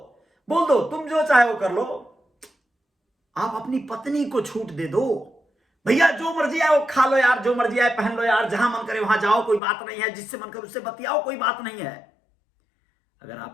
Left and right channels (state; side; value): drops out; right; at 9.6 s